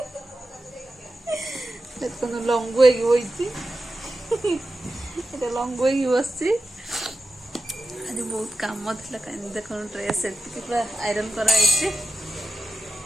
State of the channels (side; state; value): both; normal; correlation 0.92